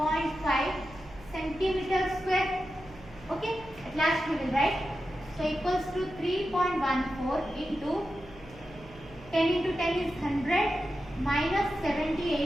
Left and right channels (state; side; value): noise; right; hum, 21 dB below the sound